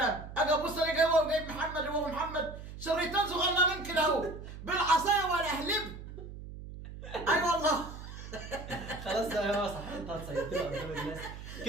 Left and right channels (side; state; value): right; noise; hum, 12 dB below the sound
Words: اجي ابص الاقي هو جايب محمد وهو محمد شريطان صغننين كده اهو بالعصايه ولا اهلب. اي والله. خلاص بقى يا صح، انت هتصيدنا قدام الناس